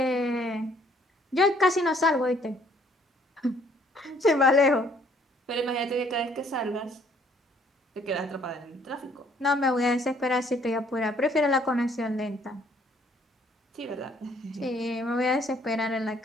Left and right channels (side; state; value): both; normal; correlation 0.63